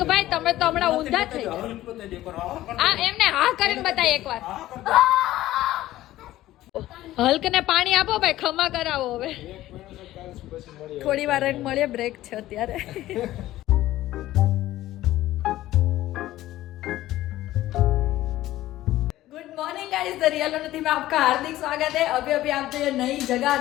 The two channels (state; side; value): quieter; right; 15.2 dB